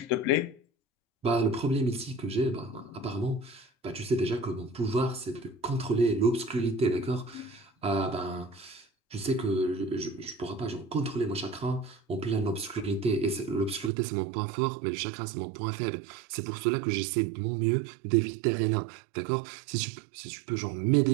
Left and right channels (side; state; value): left; drops out; at 13.9 s